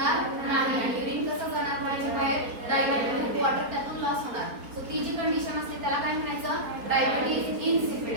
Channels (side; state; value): left; late; 4.3 ms